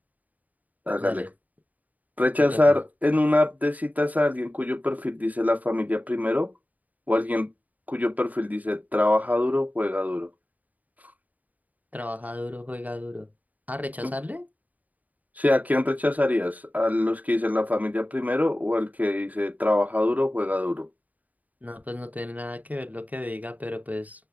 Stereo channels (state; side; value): late; left; 0.076 ms